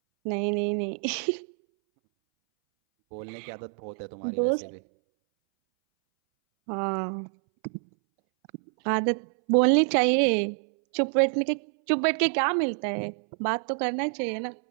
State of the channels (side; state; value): left; silent; 60 dB below the other